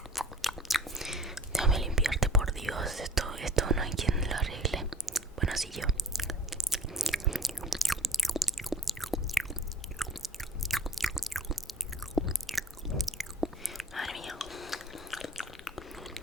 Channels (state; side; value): normal; both; correlation 0.45